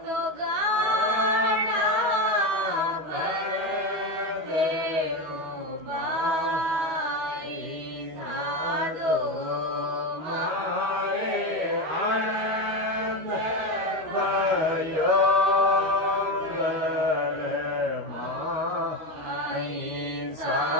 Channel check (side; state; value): left; late; 13 ms